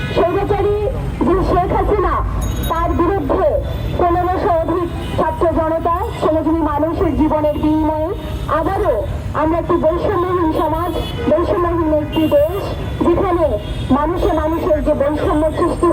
স্বৈরাচারী যে শেখ হাসিনা তার বিরুদ্ধে 1500 অধিক ছাত্র জনতা শ্রমজীবী মানুষের জীবনের বিনিময়ে আবারও আমরা একটি বৈষম্যহীন সমাজ, বৈষম্যহীন একটি দেশ, যেখানে মানুষের যে বৈষম্য সৃষ্টি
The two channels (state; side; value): identical; both; correlation 1.00